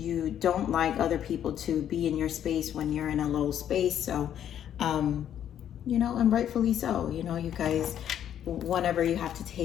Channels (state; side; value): quieter; right; 10.1 dB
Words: don't like other people to be in your space when you're in a low space. So, and rightfully so. You guys, whenever you have to